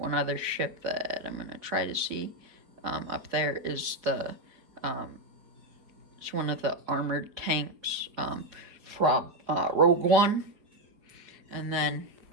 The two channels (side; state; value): left; late; 4.8 ms